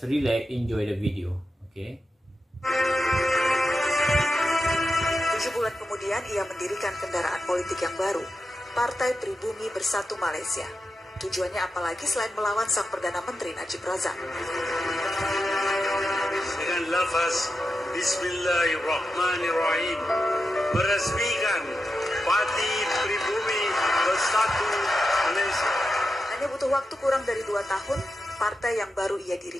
relax, enjoy the video. Okay. 7 bulan kemudian ia mendirikan kendaraan politik yang baru, Partai Pribumi Bersatu Malaysia. Tujuannya apalagi selain melawan sang Perdana Menteri Najib Razak. Dengan lafaz Bismillahirrahmanirrahim meresmikan Parti Pribumi Bersatu Malaysia. Hanya butuh waktu kurang dari 2 tahun, partai yang baru ia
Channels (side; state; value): both; normal; correlation 0.89